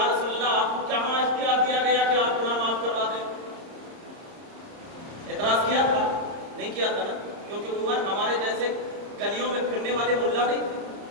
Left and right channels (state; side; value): late; left; 30 ms